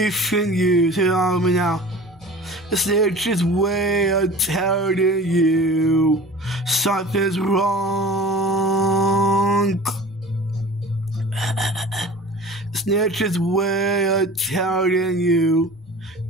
you. Say it on with me now. It's nature's way of telling you something's wrong. It's nature's way of telling you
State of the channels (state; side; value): noise; right; rumble, 30 dB below the sound